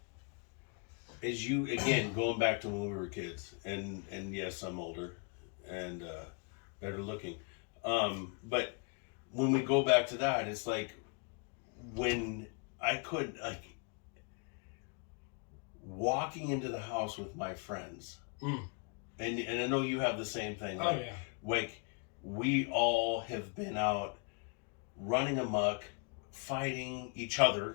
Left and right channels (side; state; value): right; quieter; 36.7 dB